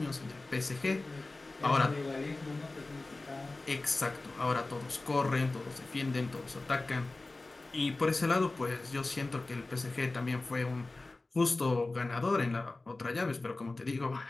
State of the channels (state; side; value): quieter; right; 3.2 dB